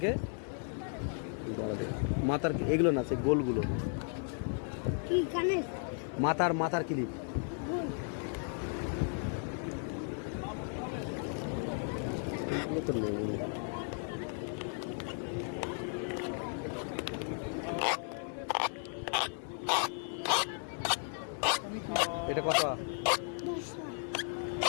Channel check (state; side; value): silent; right; 54 dB below the other